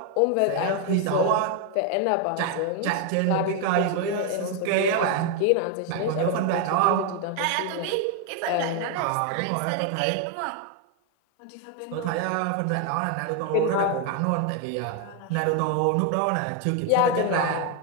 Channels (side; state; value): both; different; correlation 0.01